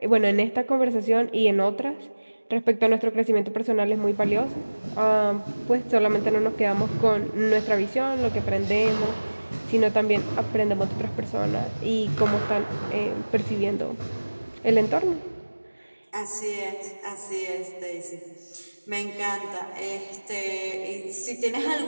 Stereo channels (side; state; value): both; inverted; correlation -1.00